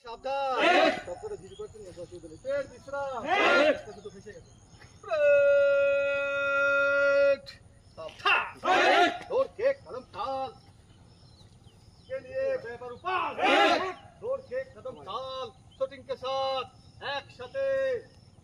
সাবধান ডক্টরে ভিড় করছেন না দশ দিন পেট বিশ্রাম কত তো ফেসে গেছে ब्रेक सावधान दौड़ के कदम ताल के लिए पेपर ऊपर दौड़ के कदम ताल शूटिंग के साथ एक साथे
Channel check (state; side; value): identical; both; correlation 1.00